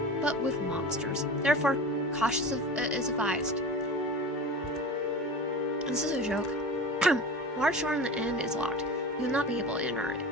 but with monsters. Therefore, caution is advised. This is a joke. Large door on the end is locked. You will not be able to enter it,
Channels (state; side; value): normal; both; correlation 0.32